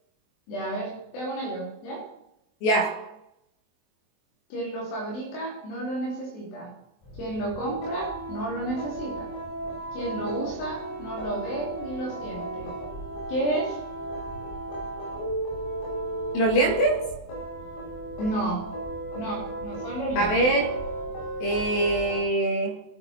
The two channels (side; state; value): right; late; 23 ms